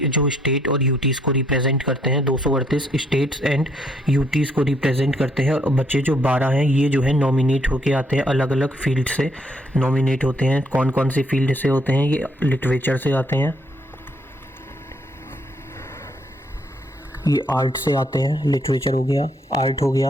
जो स्टेट और यूटीज़ को रिप्रेजेंट करते हैं। 238 स्टेट्स एंड यूटीज़ को रिप्रेजेंट करते हैं, और बच्चे जो 12 हैं ये जो है नॉमिनेट होके आते हैं, अलग अलग फील्ड से नॉमिनेट होते हैं। कौन कौन से फील्ड से होते हैं? ये लिटरेचर से आते हैं, ये आर्ट से आते हैं, लिटरेचर हो गया, आर्ट हो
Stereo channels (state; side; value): normal; both; correlation 0.70